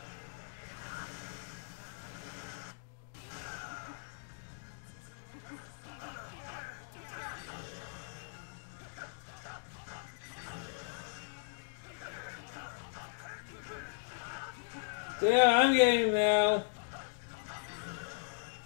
Yeah, I'm getting him now.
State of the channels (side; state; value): right; silent; digital silence